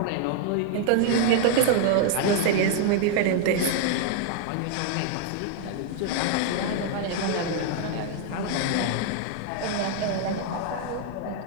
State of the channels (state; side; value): different; both; correlation 0.00